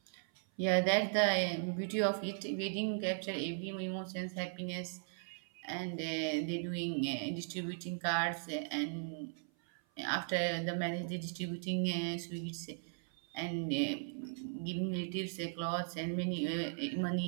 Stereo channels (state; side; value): silent; left; 53 dB below the other